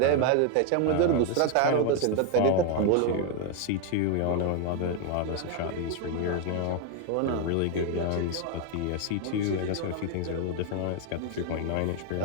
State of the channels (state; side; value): different; both; correlation 0.01